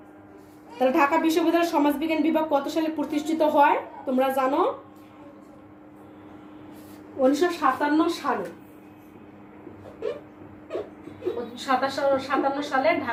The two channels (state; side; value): identical; both; correlation 1.00